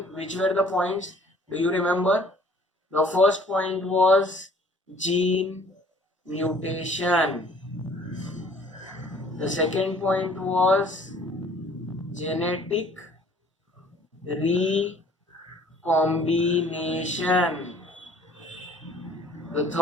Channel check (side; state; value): both; normal; correlation 0.55